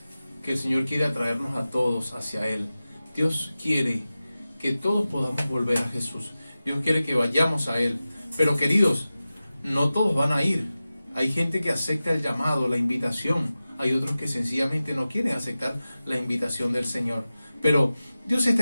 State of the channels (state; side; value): inverted; both; correlation -0.95